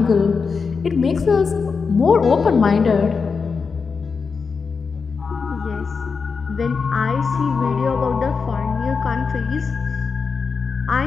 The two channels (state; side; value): quieter; right; 5.2 dB